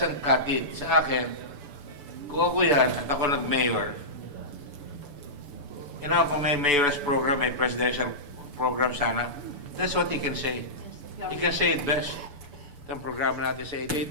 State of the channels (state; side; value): late; left; 6.9 ms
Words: cut it. Sa akin, kung ako yan at ako nag-mayor, kung may mayor's program, may presidential program sana, that's what he can say. He can say it best. Itong programa natin sa